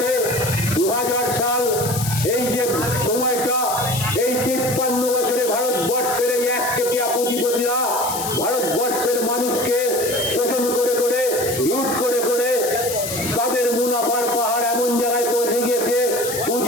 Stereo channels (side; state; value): left; noise; hiss, 6 dB below the sound